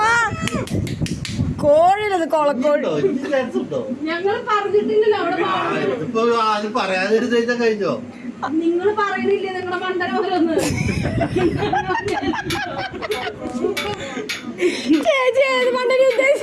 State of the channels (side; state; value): both; identical; correlation 1.00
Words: കോഴിയിലത് കൊളക്കോഴി. ഞങ്ങൾ പറഞ്ഞിട്ടില്ലല്ലോ അവിടെ പാടുന്നു. ഇപ്പൊ ആരും പറയാതിരുന്ന കഴിഞ്ഞോ? നിങ്ങൾ പറയണില്ലേ നിങ്ങളുടെ മണ്ടനോരൊന്ന്? ചേച്ചി ഏത് മണ്ടനെ